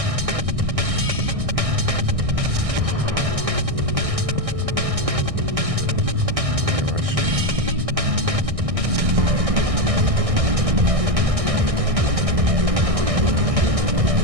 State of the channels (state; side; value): late; left; 1.6 ms